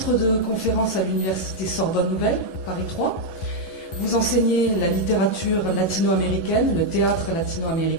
de conférence à l'université Sorbonne Nouvelle, Paris 3. Vous enseignez la littérature latino-américaine, le théâtre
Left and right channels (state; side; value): late; right; 11 ms